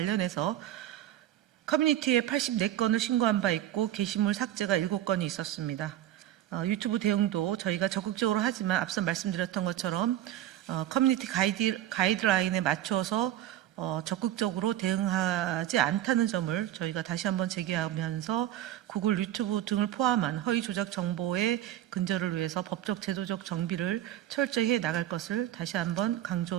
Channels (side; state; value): left; quieter; 12.8 dB